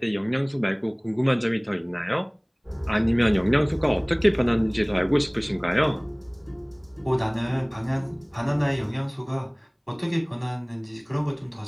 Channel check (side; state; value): both; identical; correlation 1.00